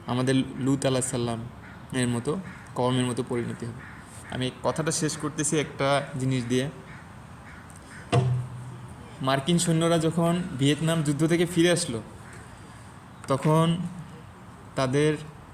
আমাদের লূত আলাইহিস সালাম এর মতো, কওমের মতো পরিণতি হবে। আমি কথাটা শেষ করতেছি একটা জিনিস দিয়ে। মার্কিন সৈন্যরা যখন ভিয়েতনাম যুদ্ধ থেকে ফিরে আসলো, তখন তাদের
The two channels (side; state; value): both; identical; correlation 1.00